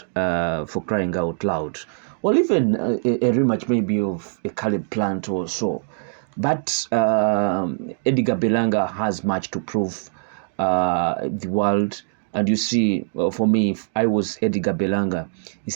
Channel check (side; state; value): left; silent; digital silence